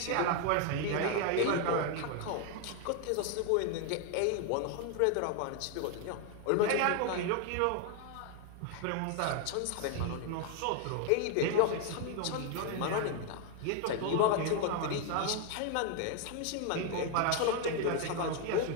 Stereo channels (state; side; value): different; both; correlation 0.01